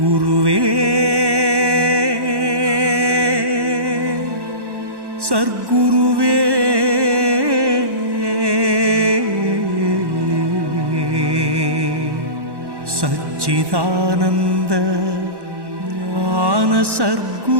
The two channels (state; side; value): late; left; 1.1 ms